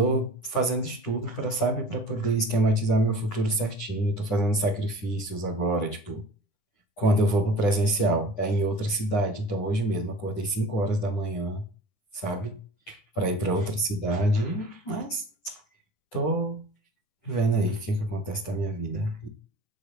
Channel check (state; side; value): late; right; 9.9 ms